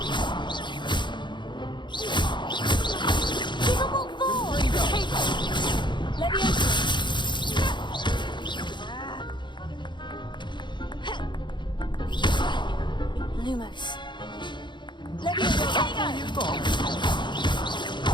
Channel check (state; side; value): late; right; 0.22 ms